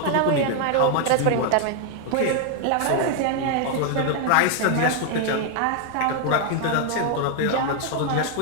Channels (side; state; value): both; different; correlation 0.00